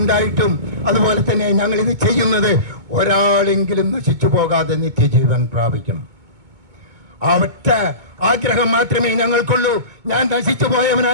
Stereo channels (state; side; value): late; left; 2.2 ms